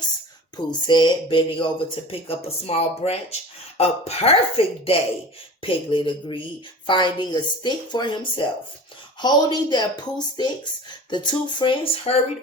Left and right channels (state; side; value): normal; both; correlation 0.37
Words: Pooh said, bending over to pick up a small branch. A perfect day, Piglet agreed, finding a stick for himself. Holding their Pooh Sticks, the two friends hurried